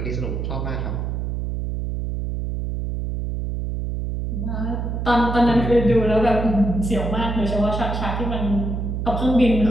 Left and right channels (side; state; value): right; noise; hum, 3 dB below the sound